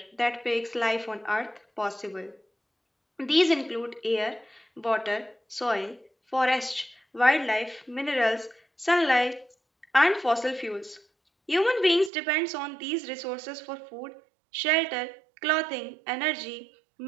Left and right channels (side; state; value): left; drops out; at 12.1 s